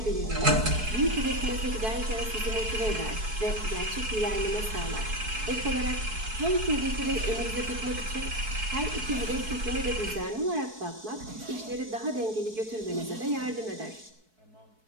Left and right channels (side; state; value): left; late; 4.6 ms